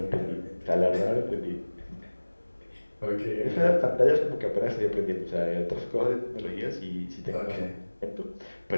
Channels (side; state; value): both; inverted; correlation -1.00